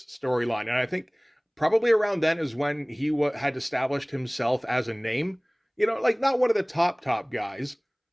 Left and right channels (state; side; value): identical; both; correlation 1.00